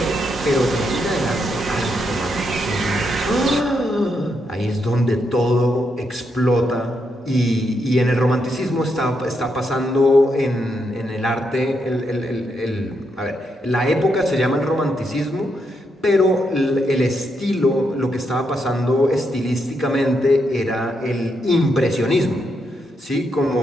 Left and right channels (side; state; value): both; normal; correlation 0.80